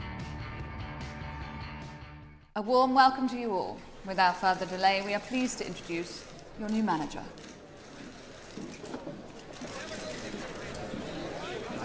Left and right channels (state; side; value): identical; both; correlation 1.00